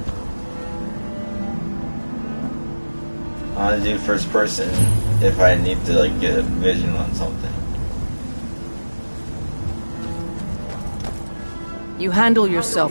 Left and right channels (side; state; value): both; inverted; correlation -1.00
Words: I want to do first person if I need to like get a vision on something. You handle